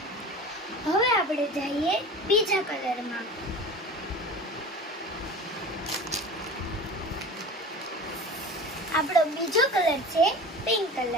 હવે આપણે જઈએ બીજા કલરમાં. આપણો બીજો કલર છે પિંક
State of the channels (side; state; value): both; normal; correlation 0.36